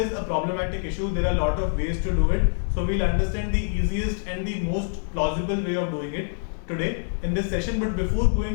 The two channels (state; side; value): silent; right; digital silence